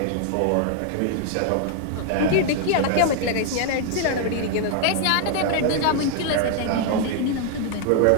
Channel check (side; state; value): both; different; correlation 0.00